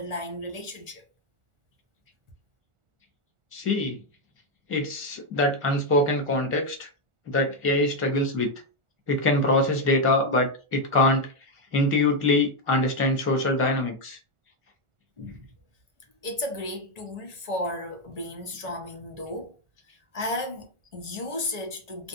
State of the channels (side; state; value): left; late; 1.4 ms